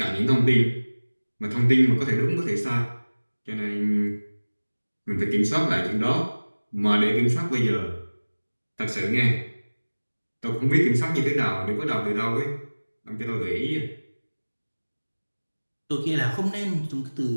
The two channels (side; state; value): both; inverted; correlation -1.00